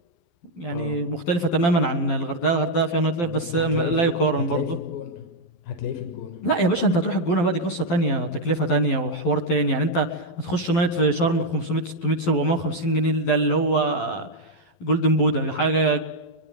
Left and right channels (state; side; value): late; right; 12 ms